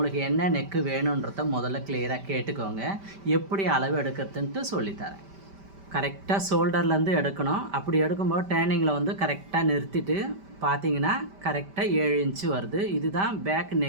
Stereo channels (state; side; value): late; left; 5.1 ms